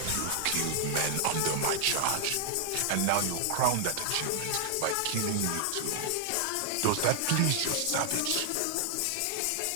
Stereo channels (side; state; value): both; different; correlation 0.00